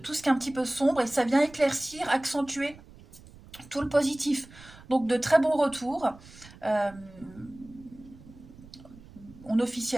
tout ce qui est un petit peu sombre, et ça vient éclaircir, accentuer tout le positif. Donc de très bons retours. Euh, on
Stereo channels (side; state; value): right; noise; rumble, 21 dB below the sound